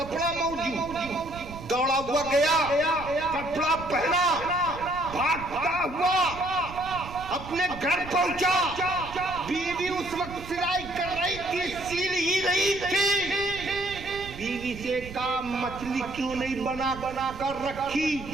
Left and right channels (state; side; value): noise; right; rumble, 13 dB below the sound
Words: मौजूद। दौड़ा हुआ गया, कपड़ा पहना, भागता हुआ अपने घर पहुंचा। बीवी उस वक्त सिलाई कर रही थी, सील ही रही थी। बीवी से कहा मछली क्यों नहीं बना कर रखी?